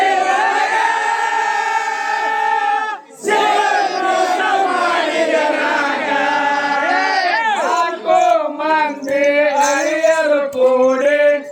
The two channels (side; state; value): both; identical; correlation 1.00